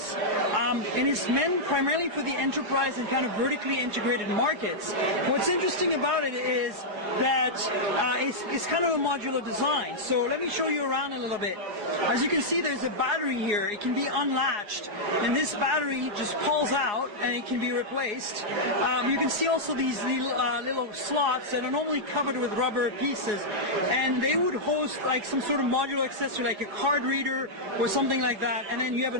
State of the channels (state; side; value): late; left; 4.8 ms